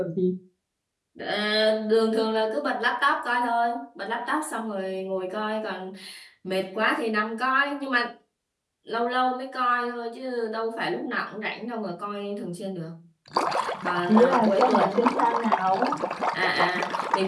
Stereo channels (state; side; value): identical; both; correlation 1.00